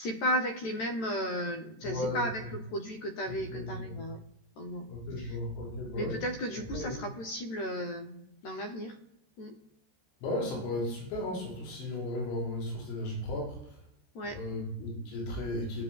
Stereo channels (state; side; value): late; right; 13 ms